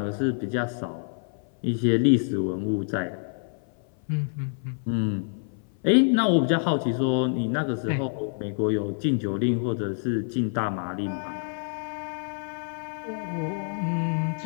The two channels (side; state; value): right; silent; 56 dB below the other